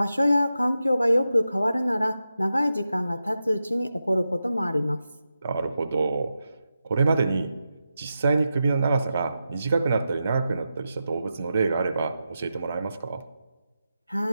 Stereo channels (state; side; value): inverted; both; correlation -0.90